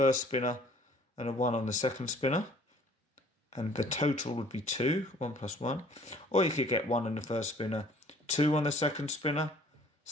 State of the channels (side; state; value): both; normal; correlation 0.55